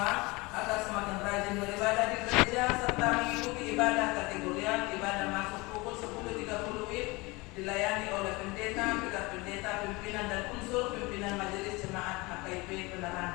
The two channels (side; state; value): right; quieter; 24.1 dB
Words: agar semakin rajin beribadah di gereja serta mengikuti ibadah kategorial. Ibadah masuk pukul 10.30 WIB dilayani oleh pendeta, pendeta, pimpinan dan unsur pimpinan majelis jemaat HKIP